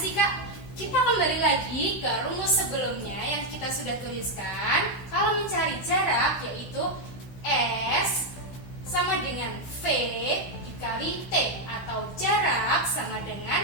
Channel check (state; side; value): late; right; 16 ms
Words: Kak? Kita kembali lagi ke rumus sebelumnya yang kita sudah tuliskan. Kalau mencari jarak yaitu S sama dengan V dikali T atau jarak sama